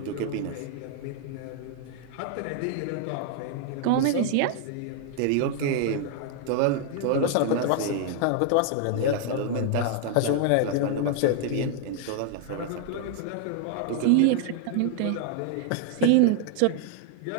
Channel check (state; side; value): different; both; correlation 0.00